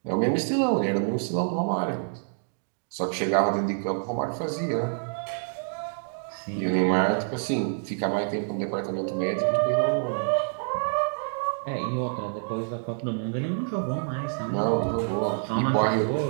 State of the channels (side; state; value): left; silent; digital silence